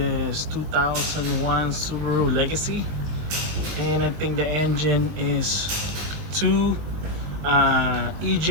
2001 Subaru Legacy and I think the engine is 2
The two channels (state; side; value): late; left; 20 ms